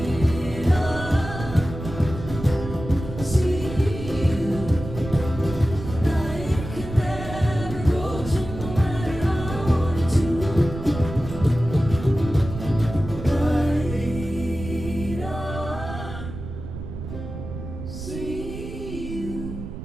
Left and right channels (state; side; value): noise; right; rumble, 9 dB below the sound